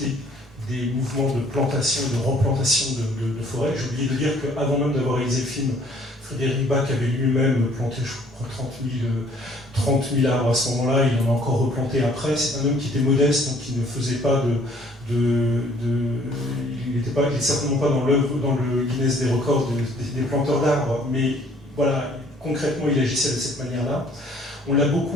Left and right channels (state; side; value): normal; both; correlation 0.59